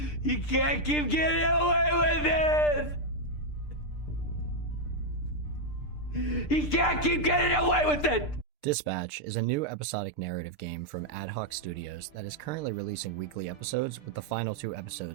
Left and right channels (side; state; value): right; late; 6.7 ms